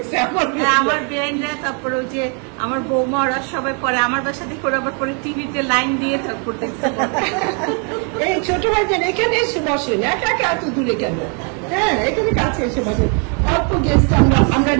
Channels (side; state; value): left; quieter; 38.2 dB